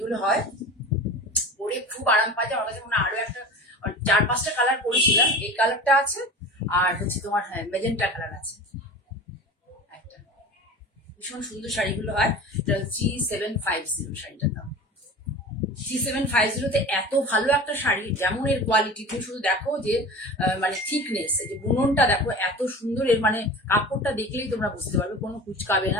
হয়, পরে খুব আরাম পাওয়া যায়। আমার কাছে মনে হয় আরো একটা 4-5টা কালার পরেছিলাম, এই কালারটা আছে আর হচ্ছে তোমার মেজেন্টা কালার আছে একটা। ভীষণ সুন্দর শাড়িগুলো হয়। এটা G750 শাড়িটার দাম। G750 এত ভালো একটা শাড়ি, যেমন এর কোয়ালিটি, তুমি শুধু দেখো যে মানে থিকনেস, যে বুননটা দেখো এত সুন্দর। এর মানে কাপড়টা দেখলেই তোমরা বুঝতে পারবে, কোনো কুচকাবে না।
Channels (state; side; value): normal; both; correlation 0.35